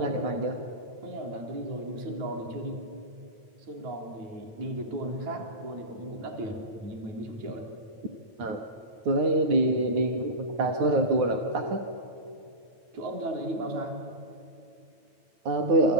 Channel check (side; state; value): left; late; 9.1 ms